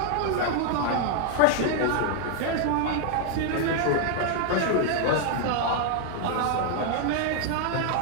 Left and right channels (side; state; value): both; different; correlation 0.00